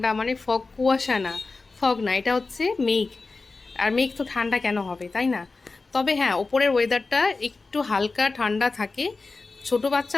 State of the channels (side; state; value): right; quieter; 3.8 dB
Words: মানে ফগ, কুয়াশা না, ফগ না, এটা হচ্ছে মেঘ। আর মেঘ তো ঠান্ডা কেন হবে, তাই না? তবে হ্যাঁ, ওপরের ওয়েদারটা একটু হালকা ঠান্ডা থাকে, ছোট